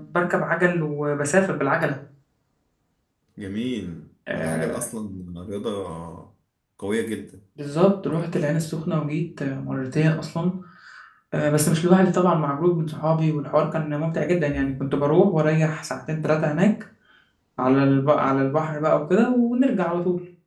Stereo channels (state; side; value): identical; both; correlation 1.00